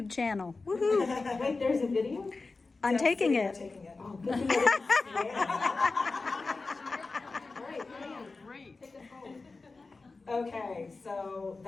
channel. Woohoo! Wait, there's a video? I'm taking it. Taking it. Oh, good thing I didn't see it. All right, Pam, great. Take us home. Okay, so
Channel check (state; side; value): quieter; right; 3.8 dB